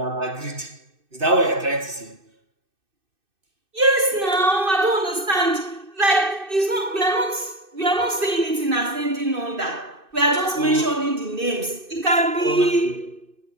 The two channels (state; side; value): late; left; 2.6 ms